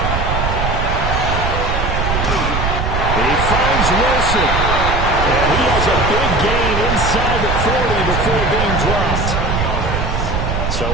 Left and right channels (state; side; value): noise; right; rumble, 1 dB below the sound